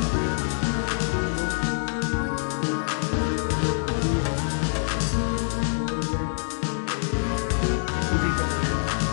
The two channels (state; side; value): silent; right; digital silence